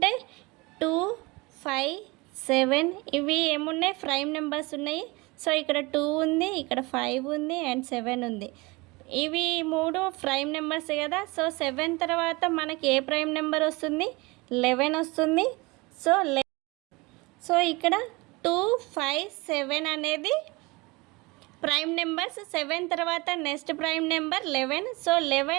2, 5, 7 ఇవి ఏమున్నాయి ప్రైమ్ నెంబర్స్ ఉన్నాయి. సో ఇక్కడ 2 ఉంది, ఇక్కడ 5 ఉంది అండ్ 7 ఉంది. ఇవి 3 ప్రైమ్ నెంబర్స్ కదా. సో 7 తర్వాత మనకి ఏ ప్రైమ్ నెంబర్ వస్తుంది 11 వస్తుంది. సో ఇక్కడ 2, 5, 7 అనేది ప్రైమ్ నెంబర్స్. 7 తర్వాత next prime number 11. So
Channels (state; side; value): quieter; left; 24.7 dB